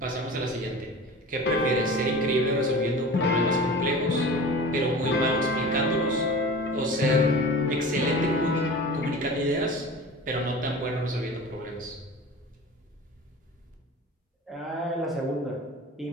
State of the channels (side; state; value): both; normal; correlation 0.36